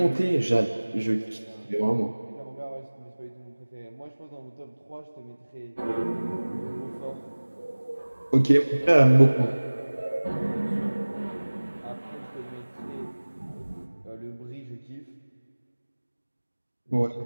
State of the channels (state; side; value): inverted; both; correlation -1.00